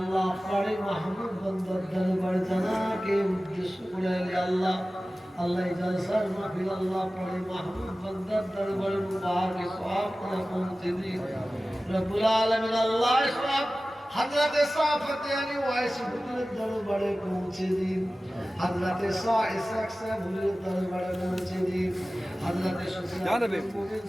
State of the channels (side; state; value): both; normal; correlation 0.96